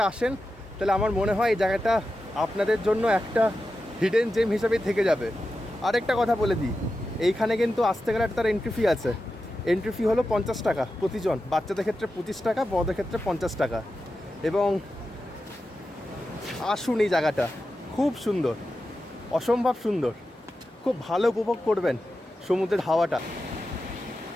আসেন, তাহলে আমার মনে হয় এই জায়গাটা আপনাদের জন্য একটা হিডেন জেম হিসাবেই থেকে যাবে। আরেকটা কথা বলে দিই, এইখানে কিন্তু আসতে গেলে তার এন্ট্রি ফি আছে। এন্ট্রি ফি হলো 50 টাকা প্রতিজন, বাচ্চাদের ক্ষেত্রে 25 টাকা, বড়দের ক্ষেত্রে 50 টাকা। এবং আসুন, এই জায়গাটা খুব সুন্দর, অসম্ভব সুন্দর, খুব ভালো উপভোগ করবেন সমুদ্রের হাওয়াটা।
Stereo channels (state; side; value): normal; both; correlation 0.91